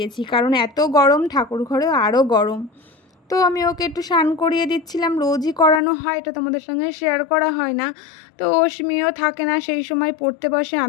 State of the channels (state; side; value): drops out; right; at 5.8 s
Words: কারণ এত গরম, ঠাকুর ঘরেও আরও গরম। তো আমি ওকে একটু স্নান করিয়ে দিচ্ছিলাম, রোজই করানো হয়, এটা তোমাদের সঙ্গে শেয়ার করা হয় না। তো অশ্মিও থাকে না সেই সময়, পড়তে বসে,